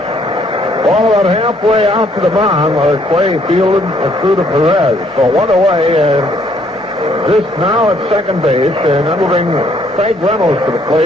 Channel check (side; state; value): both; normal; correlation 0.66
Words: Ball about halfway out to the mound, Clay fielded and threw to Perez. So one away, and Zisk now at second base, and that'll bring Craig Reynolds to the